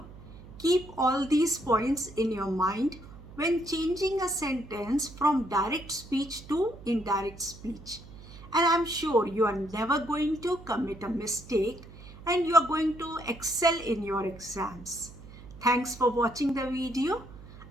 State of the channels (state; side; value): noise; right; hum, 17 dB below the sound